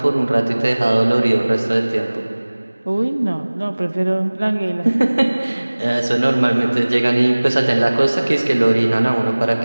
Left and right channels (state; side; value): inverted; both; correlation -1.00